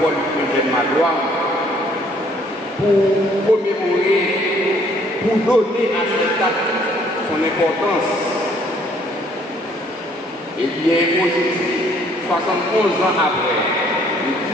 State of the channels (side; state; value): both; normal; correlation 0.62